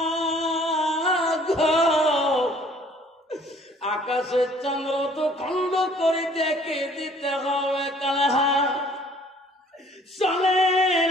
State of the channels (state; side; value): normal; both; correlation 0.56